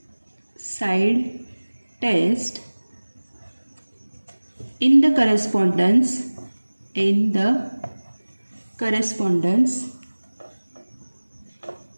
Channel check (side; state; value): both; inverted; correlation -1.00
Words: side test in the correspondence